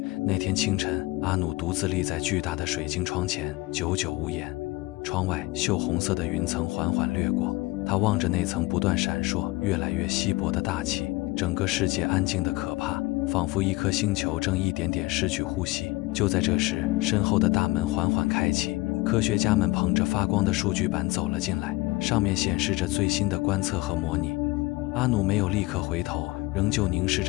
那天清晨，阿努独自立在巨大的水晶窗前，久久无言。窗外锈红色的云层缓缓掠过，他望着那层不断闪烁、越来越稀薄的大气，整个世界安静得可怕，仿佛一颗星球正一点点失去呼吸。就在这时，身后的大门缓缓开启，科学家们捧着发光的数据板走了进来，上面显示着最新的观测和模拟。阿努没有立刻回头，仍旧凝视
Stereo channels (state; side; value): quieter; right; 21.3 dB